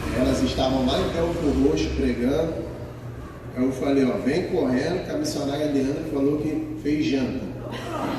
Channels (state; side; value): identical; both; correlation 1.00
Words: Elas estavam lá em Belfor Roxo pregando. Eu falei, ó, vem correndo, que a missionária Leandra falou que fez janta.